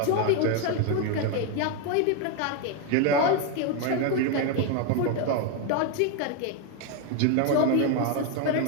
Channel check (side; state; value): both; different; correlation 0.01